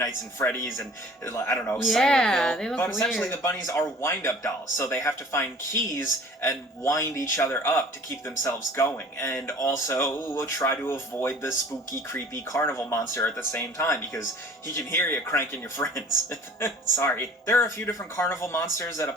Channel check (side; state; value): both; normal; correlation 0.47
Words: at Freddy's and, I don't know, Silent Hill. But essentially the bunnies are wind-up dolls, so they have to find keys and wind each other up to keep themselves going, and also try to avoid the spooky, creepy carnival monster at the same time, because he can hear you cranking your friends. Sorry. There are a few different carnival monsters that a